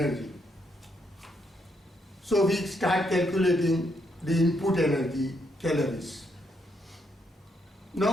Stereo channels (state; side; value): normal; both; correlation 0.76